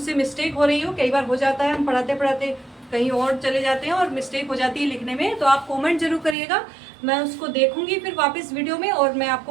मिस्टेक हो रही हो, कई बार हो जाता है हम पढ़ाते पढ़ाते कहीं और चले जाते हैं और मिस्टेक हो जाती है लिखने में, तो आप कमेंट जरूर करिएगा, मैं उसको देखूंगी फिर वापस वीडियो में और मैं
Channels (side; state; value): left; drops out; at 6.4 s